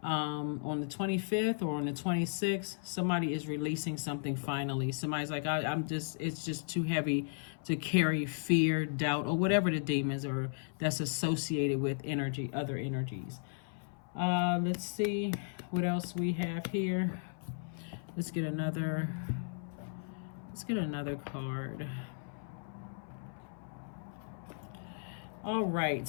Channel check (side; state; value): right; silent; 54 dB below the other